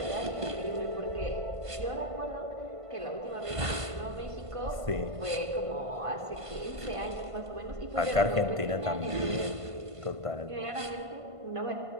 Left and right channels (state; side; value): late; left; 1.5 ms